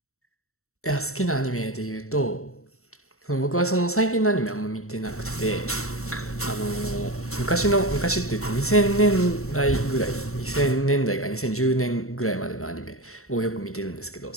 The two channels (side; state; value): right; late; 0.63 ms